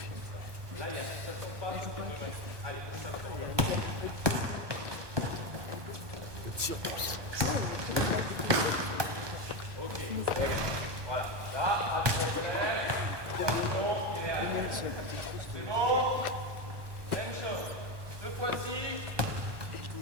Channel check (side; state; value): left; late; 1.2 ms